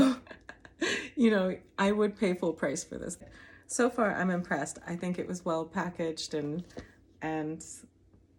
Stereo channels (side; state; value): both; identical; correlation 1.00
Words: I would pay full price for this. So far, I'm impressed. I think it was well packaged, and